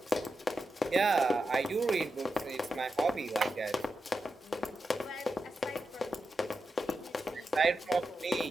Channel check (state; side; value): normal; both; correlation 0.88